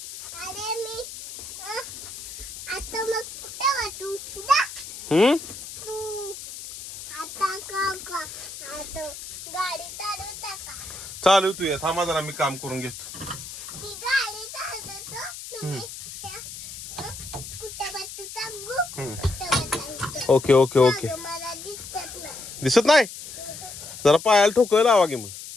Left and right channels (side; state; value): left; noise; hiss, 11 dB below the sound